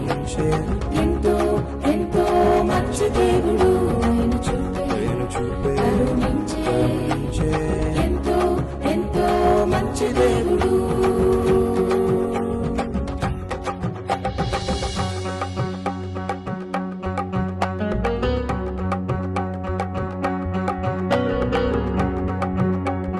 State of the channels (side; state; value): both; identical; correlation 1.00